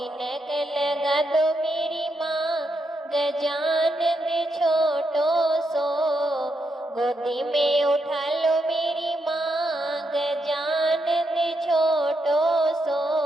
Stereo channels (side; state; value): both; normal; correlation 0.82